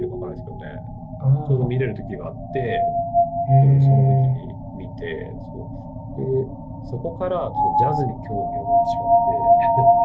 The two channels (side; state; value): both; identical; correlation 1.00